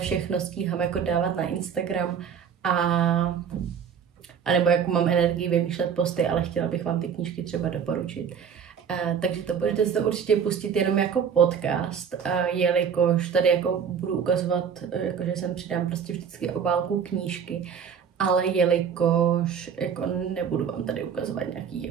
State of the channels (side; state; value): left; quieter; 7.3 dB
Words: stíhám jako dávat na Instagram a nebo jako mám energii vymýšlet posty, ale chtěla bych vám ty knížky třeba doporučit. Takže to budete si to určitě pustit jenom jako podcast, jelikož tady jako budu ukazovat, jako že sem přidám prostě vždycky obálku knížky, ale jelikož jako nebudu vám tady ukazovat nějaký